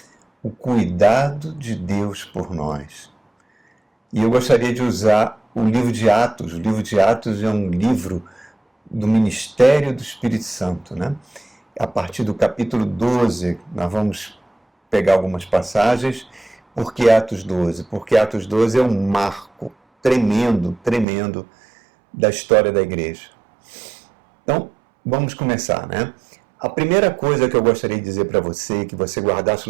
O Cuidado de Deus por Nós. E eu gostaria de usar o livro de Atos. O livro de Atos é um livro do ministério do Espírito Santo, né? A partir do capítulo 12, nós vamos pegar algumas passagens. Por que Atos 12? Porque Atos 12 é um marco tremendo da história da igreja. Então, vamos começar, né? A primeira coisa que eu gostaria de dizer para você, que você guardasse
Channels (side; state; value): left; drops out; at 21.1 s